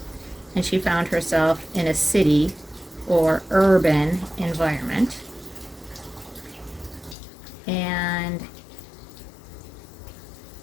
And she found herself in a city or urban environment. And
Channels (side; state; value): right; drops out; at 7.2 s